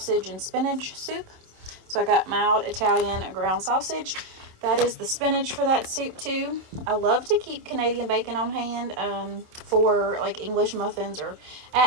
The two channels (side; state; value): left; late; 27 ms